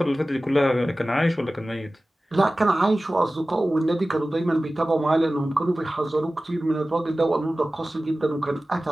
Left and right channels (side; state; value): both; normal; correlation 0.96